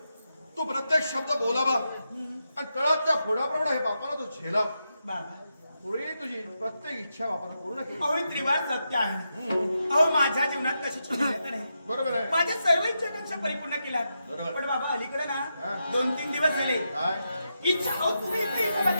तू प्रत्येक शब्द बोलावा आणि तळातल्या फोडाप्रमाणे हे बापाला तू झेलाव. बाबा पुढे तुझी प्रत्येक इच्छा बापाला पूर्ण केली. अहो हे त्रिवार सत्य आहे. अहो माझ्या जीवनात कशाची मर्यादा नाही. बरोबर आहे. माझ्या सर्व इच्छाकांक्षा परिपूर्ण केल्या. बरोबर. पण बाबा अलीकडे ना हा. 2-3 दिवस झाले काय इच्छा अहो तुम्ही इथे इथं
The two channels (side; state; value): both; inverted; correlation -0.86